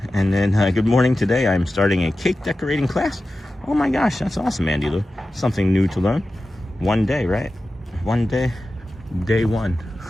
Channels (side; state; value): both; normal; correlation 0.94